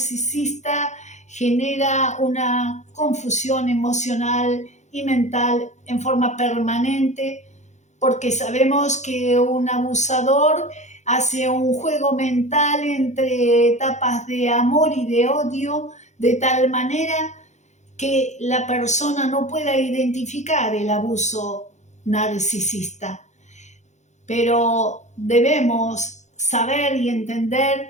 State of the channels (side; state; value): right; late; 0.34 ms